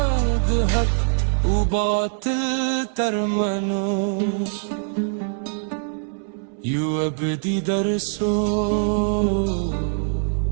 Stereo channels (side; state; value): left; silent; 62 dB below the other